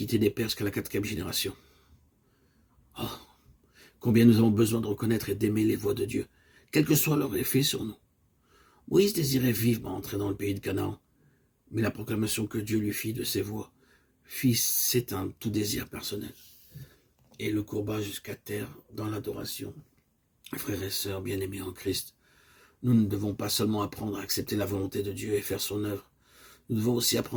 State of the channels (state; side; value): identical; both; correlation 1.00